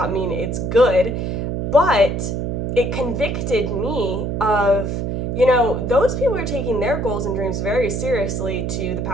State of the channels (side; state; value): right; noise; hum, 2 dB below the sound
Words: mean it's good, but it convicted me of, those people are taking their goals and dreams very seriously to the